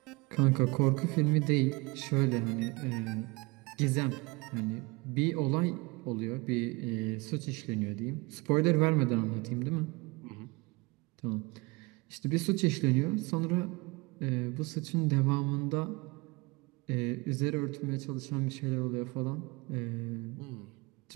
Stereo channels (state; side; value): quieter; left; 25.4 dB